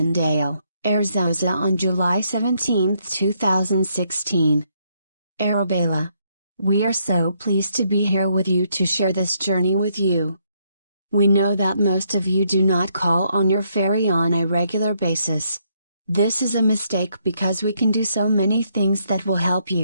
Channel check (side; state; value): both; inverted; correlation -0.74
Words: Arizona on July 17, 2016. Arabella. We are so pleased to be here with you to share this journey with you. We know that most of you do not call on your fairy on a regular basis. This is a mistake because we can do so many things that will help